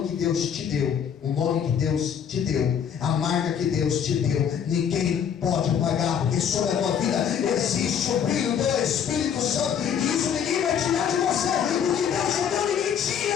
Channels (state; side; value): quieter; right; 8.0 dB